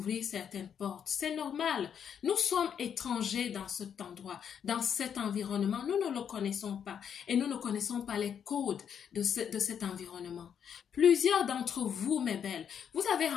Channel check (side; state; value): right; quieter; 8.1 dB